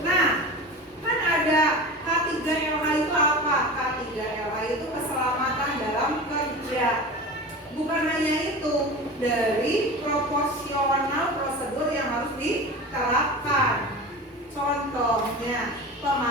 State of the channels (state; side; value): normal; both; correlation 0.31